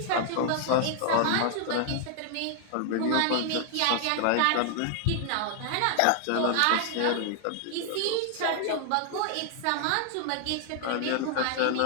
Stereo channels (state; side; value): different; both; correlation 0.00